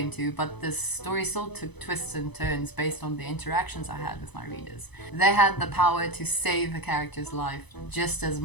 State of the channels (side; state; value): right; late; 0.99 ms